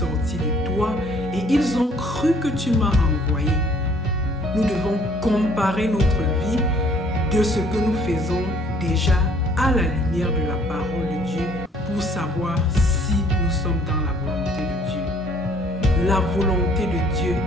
de toi et ils ont cru que tu m'as envoyé. » Nous devons comparer notre vie de ce que nous faisons déjà à la lumière de la parole de Dieu pour savoir si nous sommes dans la volonté de Dieu. La volonté de Dieu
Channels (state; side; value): normal; both; correlation 0.60